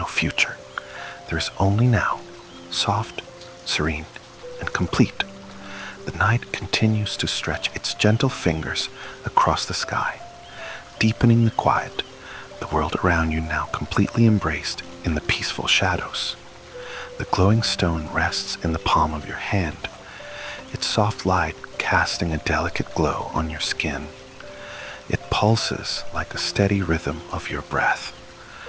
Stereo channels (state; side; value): identical; both; correlation 1.00